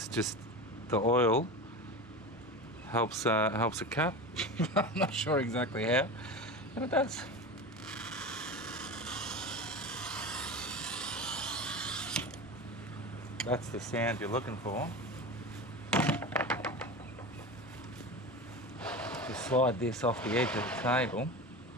just, the oil helps it cut. I'm not sure exactly how, but it does. That's the sound you're looking for. Just slide this off the edge of the table.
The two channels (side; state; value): both; normal; correlation 0.27